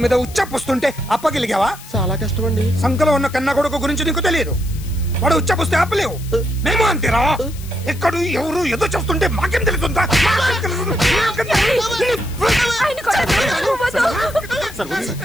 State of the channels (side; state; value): left; noise; hiss, 18 dB below the sound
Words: మీద ఉచ్చపుస్తుంటే అప్పగిలిగావా? చాలా కష్టం అండి. సంకలో ఉన్న కన్నా కొడుకు గురించి నీకు తెలియదు. వాడు ఉచ్చపుస్తే ఆపలేవు. మేము అంతేరా. ఎక్కడు ఎవరు ఏదో చేస్తుంటే మాకేం తెలుస్తుందా?